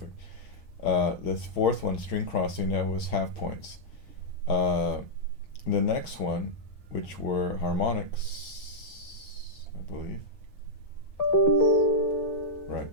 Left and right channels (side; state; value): right; late; 6.6 ms